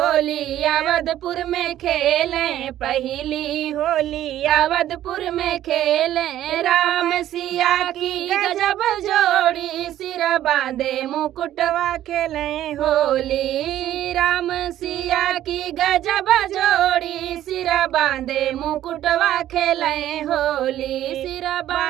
अवधपुर में खेले, पहली होली अवधपुर में खेले। राम सिया की गजब जोड़ी, सिर बांधे मुकुटवा खेले होली। राम सिया की गजब जोड़ी, सिर बांधे मुकुटवा खेले होली, सिर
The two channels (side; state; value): left; quieter; 12.6 dB